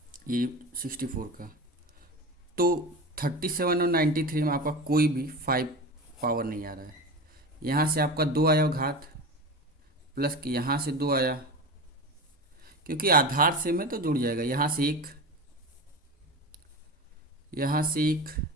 ये 64 का। तो 37 और 93 में आपका कोई भी 5 पावर नहीं आ रहा है। यहाँ से आपका 2 आया घात, प्लस कि यहाँ से 2 आया, क्योंकि आधार से में तो जुड़ जाएगा। यहाँ से 1, यहाँ से 1,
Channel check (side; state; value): both; normal; correlation 0.28